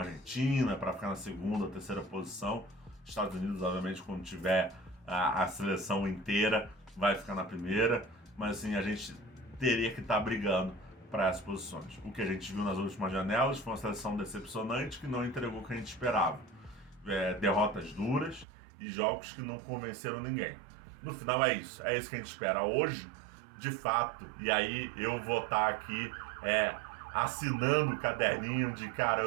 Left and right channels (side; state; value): left; drops out; at 18.4 s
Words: Argentina para ficar na segunda ou terceira posição. Estados Unidos, obviamente, quando tiver a seleção inteira, vai ficar na primeira. Mas assim, a gente teria que estar brigando para essas posições. O que a gente viu nas últimas janelas foi uma seleção decepcionante que não entregou o que a gente esperava. derrotas duras e jogos que não convenceram ninguém. No final é isso que a gente espera hoje, de fato, e aí eu vou estar aqui assinando o caderninho de, cara,